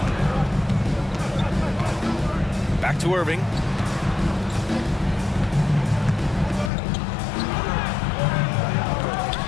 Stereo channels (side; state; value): right; drops out; at 6.7 s